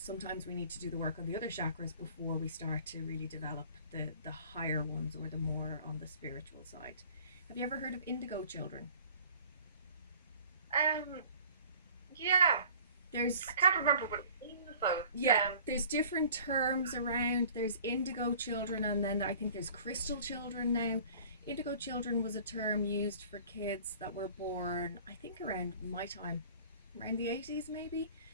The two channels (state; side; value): inverted; both; correlation -0.49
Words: we need to do the work on the other chakras before we start to really develop the higher ones, or the more on the spiritual side. Have you ever heard of Indigo Children? Yeah. There's I can't remember what it means though. There's different terms around. There's Indigo Children, and then I think there's Crystal Children now. Indigo Children was a term used for kids that were born, I think, around my time, around the 80s maybe,